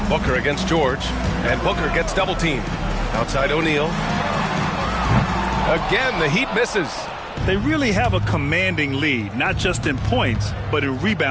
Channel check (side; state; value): both; identical; correlation 1.00